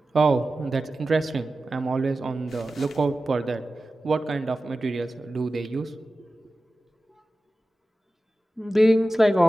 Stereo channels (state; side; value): normal; both; correlation 0.94